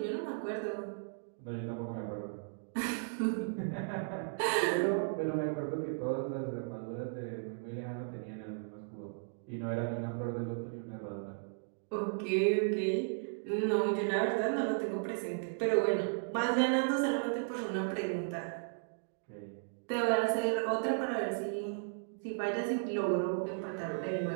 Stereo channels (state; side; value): silent; left; digital silence